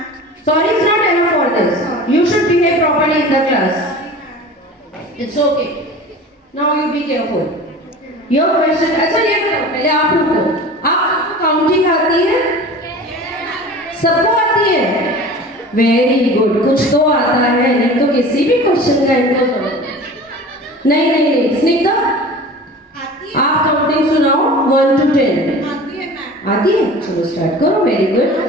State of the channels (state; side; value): normal; both; correlation 0.38